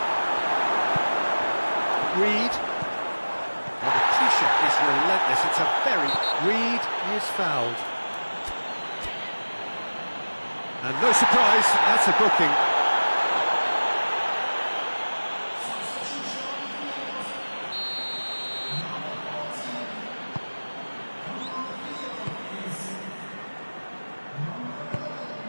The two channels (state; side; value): inverted; both; correlation -1.00